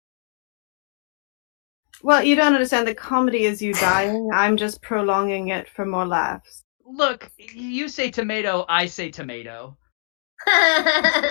Well, you don't understand. The comedy is you dying. I'm just prolonging it for more laughs. Look, you say tomato, I say tomato.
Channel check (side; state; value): right; silent; digital silence